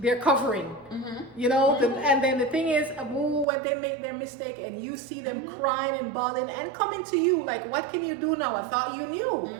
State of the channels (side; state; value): left; drops out; at 3.5 s